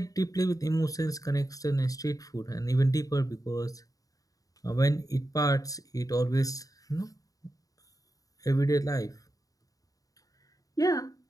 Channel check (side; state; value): right; late; 0.17 ms